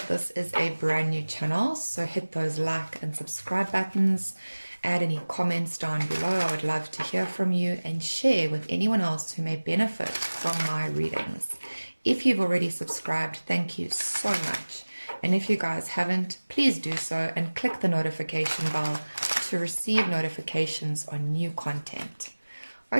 this is a brand new channel, so hit those like and subscribe buttons, add any comments down below. I would love to hear from you, and share with anyone else who may benefit from my readings. If you've already subscribed, thank you so much. And if you guys haven't, please do so and click the notification bell to receive notifications on new content.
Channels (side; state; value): both; inverted; correlation -1.00